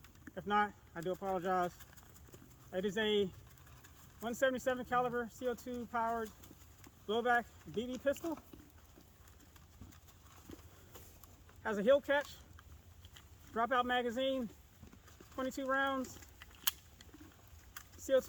If not, I do apologize. It is a 177 caliber CO2 powered blowback BB pistol. Has a hill catch, dropout magazine, 22 rounds.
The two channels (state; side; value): identical; both; correlation 1.00